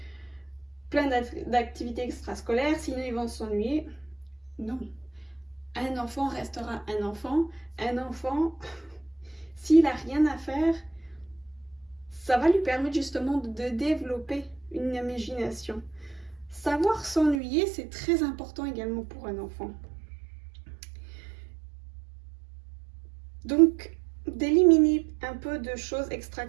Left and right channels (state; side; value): drops out; left; at 17.4 s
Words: plein d'activités extrascolaires, sinon ils vont s'ennuyer. Non. Un enfant restera un enfant. Un enfant, s'il n'a rien à faire, ça va lui permettre justement de développer une imagination. Savoir s'ennuyer, c'est très important également pour un enfant. Donc, d'éliminer un peu de choses